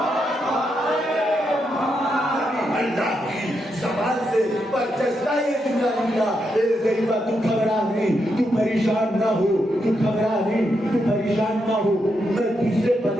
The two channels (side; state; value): both; normal; correlation 0.82